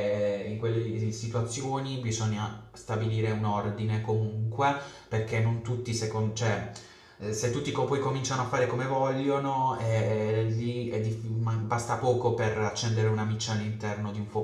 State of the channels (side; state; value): both; identical; correlation 1.00